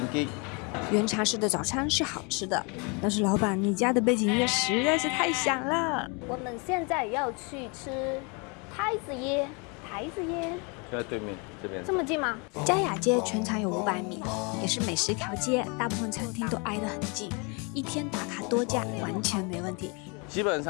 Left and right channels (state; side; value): quieter; right; 32.1 dB